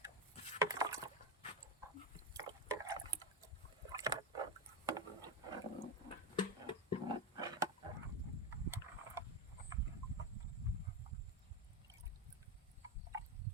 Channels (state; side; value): normal; both; correlation 0.12